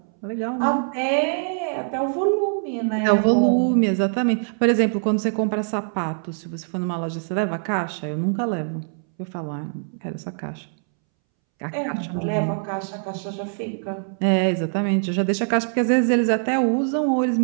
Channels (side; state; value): left; silent; 63 dB below the other